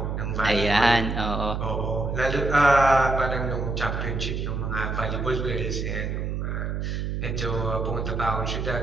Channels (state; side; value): noise; right; hum, 2 dB below the sound